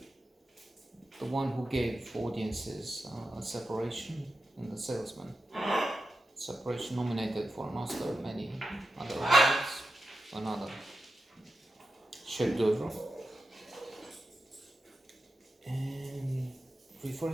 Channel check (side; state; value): both; normal; correlation 0.91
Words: The one who gave audiences a Separation and The Salesman. Separation nominated for an Oscar, many other awards, another chef d'oeuvre. And